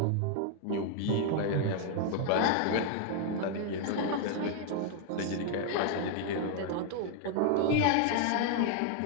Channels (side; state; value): both; different; correlation 0.00